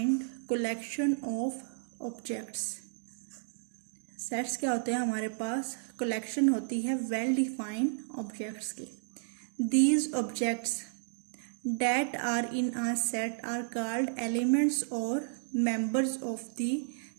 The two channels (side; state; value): left; silent; digital silence